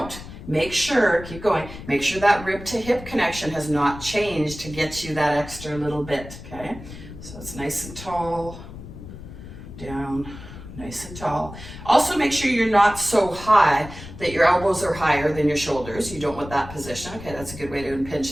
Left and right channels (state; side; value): noise; left; rumble, 14 dB below the sound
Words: Make sure, keep going, make sure that rib to hip connection has not changed to get you that extra little bit, okay? So it's nice and tall, down, nice and tall. Also make sure you're not so high that your elbows are higher than your shoulders. You don't want that position. Okay, that's a good way to impinge